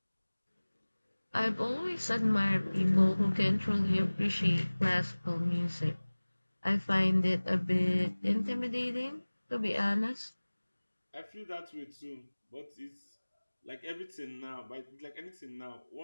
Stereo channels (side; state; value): both; inverted; correlation -1.00